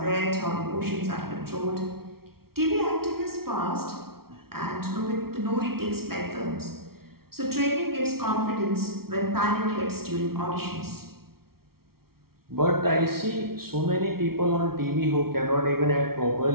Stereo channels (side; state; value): left; late; 0.94 ms